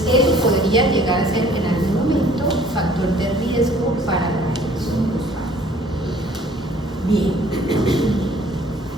eso podría llegar a ser en algún momento factor de riesgo para la depresión postparto. Bien.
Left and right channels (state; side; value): normal; both; correlation 0.55